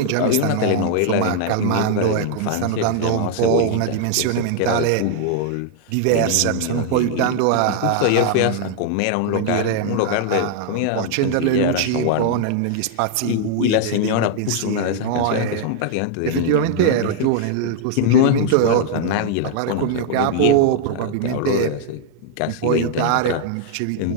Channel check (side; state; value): both; different; correlation 0.00